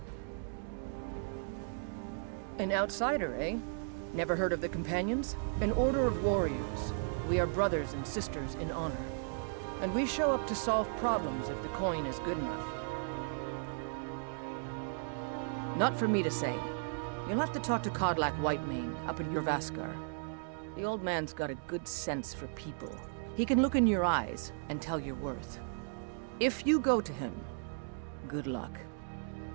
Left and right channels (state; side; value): silent; left; digital silence